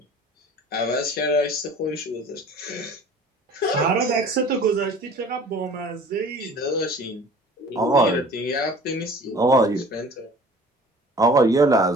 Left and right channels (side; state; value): both; normal; correlation 0.46